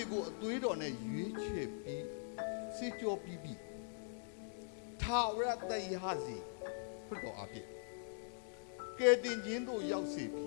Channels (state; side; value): silent; right; digital silence